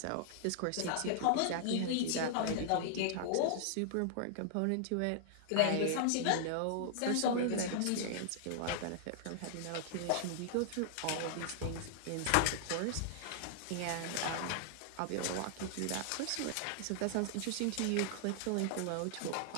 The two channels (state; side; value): different; both; correlation -0.01